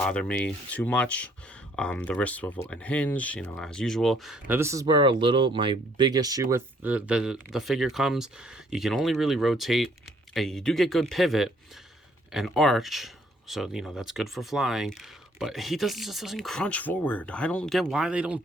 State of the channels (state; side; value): normal; both; correlation 0.64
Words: me too much. The wrist swivel and hinge, as usual. Now this is where my big issue with the figure comes. You can only really rotate, and you do get good pivot and arch. So, that's good for flying. But he just doesn't crunch forward. I don't get why they don't